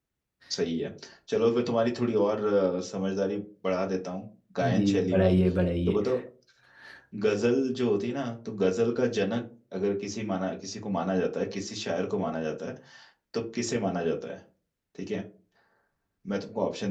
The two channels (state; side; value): identical; both; correlation 1.00